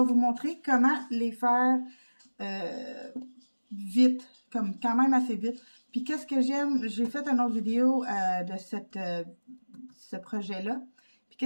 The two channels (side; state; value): both; inverted; correlation -1.00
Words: vous montrer comment les faire vite, comme quand même assez vite. Puis qu'est-ce que j'aime, j'ai fait une autre vidéo de ce projet-là. Puis